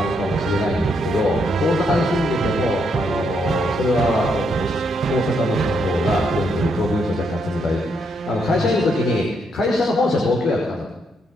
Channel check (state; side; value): normal; both; correlation 0.76